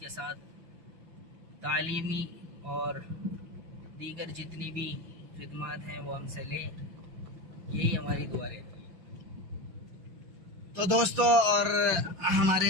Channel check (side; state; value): left; late; 5.8 ms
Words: ساتھ تعلیمی اور دیگر جتنی بھی خدمات ہیں وہ ہم سے لیں، یہی ہماری دعا رہتی ہے۔ تو دوستو اور